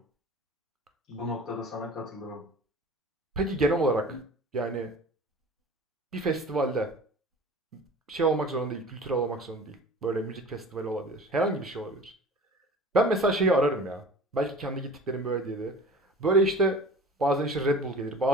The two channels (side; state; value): both; normal; correlation 0.41